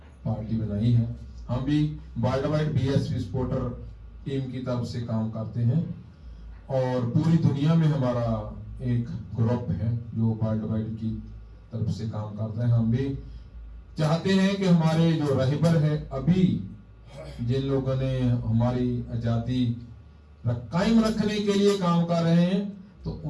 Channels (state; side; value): identical; both; correlation 1.00